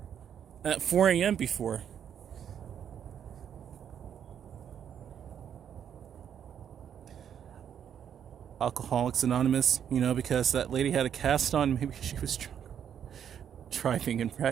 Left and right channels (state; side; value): quieter; left; 8.8 dB